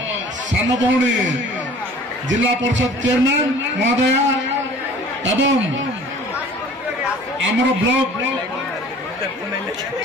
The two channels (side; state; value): both; normal; correlation 0.48